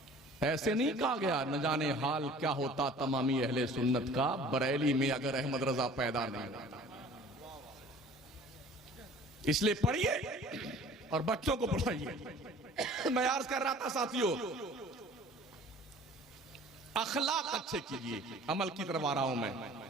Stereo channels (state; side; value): normal; both; correlation 0.48